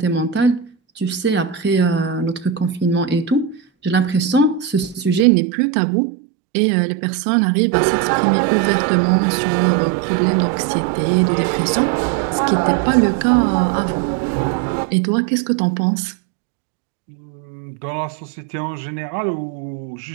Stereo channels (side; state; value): left; drops out; at 5.2 s